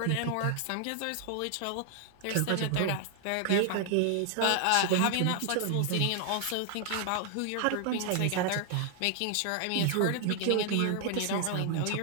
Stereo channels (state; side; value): different; both; correlation 0.00